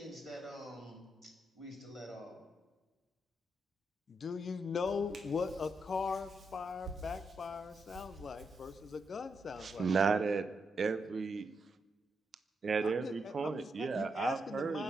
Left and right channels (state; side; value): normal; both; correlation 0.82